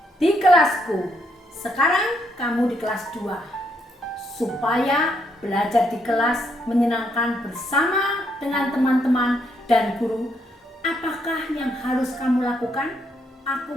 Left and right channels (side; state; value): both; normal; correlation 0.74